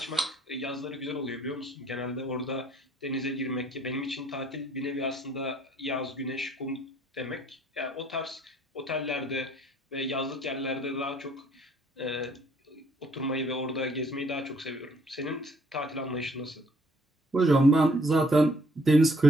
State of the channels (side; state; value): both; normal; correlation 0.63